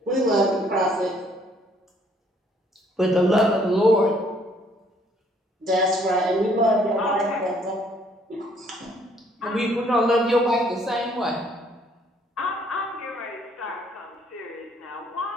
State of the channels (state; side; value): normal; both; correlation 0.64